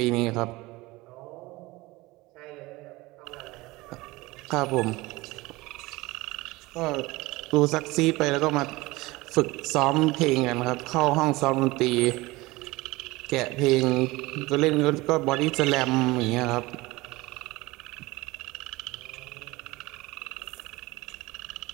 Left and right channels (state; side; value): quieter; left; 21.1 dB